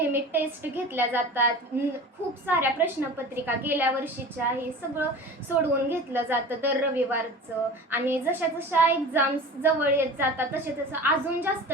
टेस्ट घेतल्या जातात. खूप साऱ्या प्रश्नपत्रिका गेल्या वर्षीच्या हे सगळं सोडवून घेतलं जातं दर रविवारचं. आणि जशा जशा एक्झाम्स जवळ येत जातात तसे तसं अजून जास्त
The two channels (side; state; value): both; normal; correlation 0.37